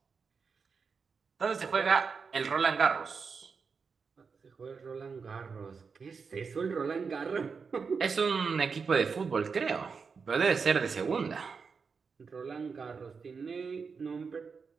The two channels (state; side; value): quieter; left; 5.4 dB